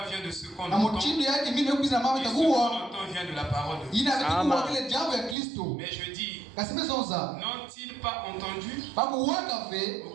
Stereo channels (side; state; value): left; drops out; at 5.4 s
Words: vient de ce qu'on entend, et ce qu'on entend vient de la parole de Dieu. Mais je dis, n'ont-ils pas entendu? Au